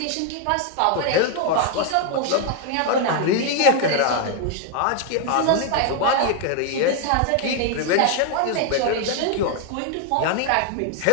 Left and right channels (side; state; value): both; different; correlation 0.00